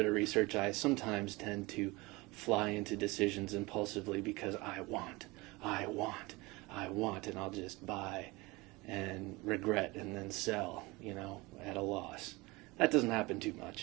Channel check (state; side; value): quieter; left; 23.2 dB